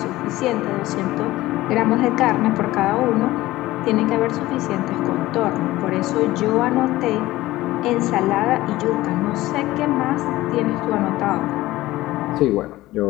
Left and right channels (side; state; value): right; quieter; 17.2 dB